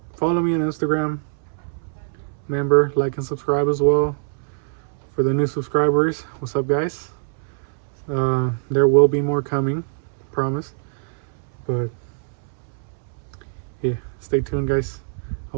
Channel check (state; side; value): silent; left; 63 dB below the other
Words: me on Instagram. Remember, like and subscribe as well. For the new subscribers, what's up, guys? There will be more coming, promise. But yeah, stay tuned, guys. I